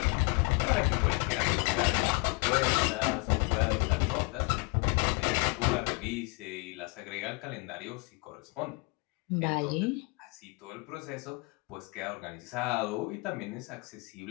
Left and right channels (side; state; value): right; quieter; 27.6 dB